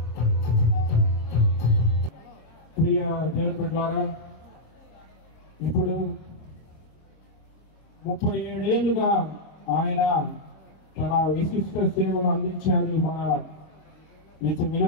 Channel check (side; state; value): right; late; 26 ms